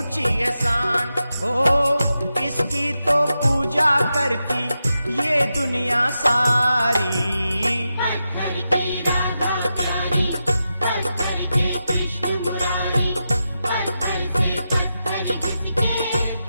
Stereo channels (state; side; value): inverted; both; correlation -0.89